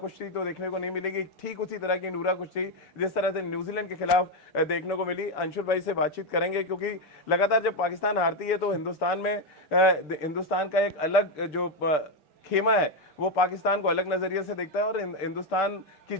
तो देखने को नहीं मिलेगी, ठीक उसी तरह की नूरा कुश्ती जिस तरह से न्यूजीलैंड के खिलाफ देखने को मिली। अंशुल भाई से बातचीत करेंगे, क्योंकि लगातार जब पाकिस्तान हारती है तो हिंदुस्तान का एक अलग जो खेमा है वो पाकिस्तान को अलग नजरिए से देखता है और हिंदुस्तान की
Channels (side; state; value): right; late; 5.2 ms